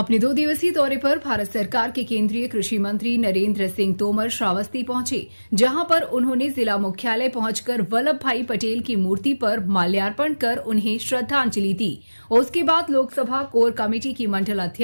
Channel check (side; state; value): both; inverted; correlation -1.00